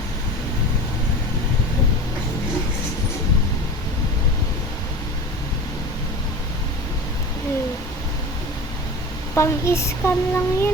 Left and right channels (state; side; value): normal; both; correlation 0.33